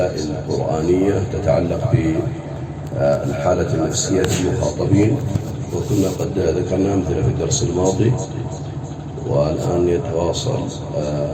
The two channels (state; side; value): identical; both; correlation 1.00